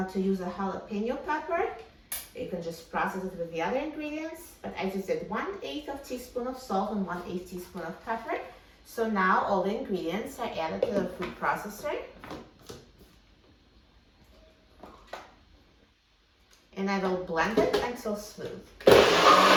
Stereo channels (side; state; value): both; identical; correlation 1.00